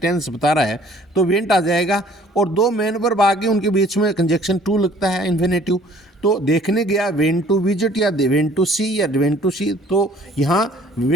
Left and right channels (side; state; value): both; normal; correlation 0.55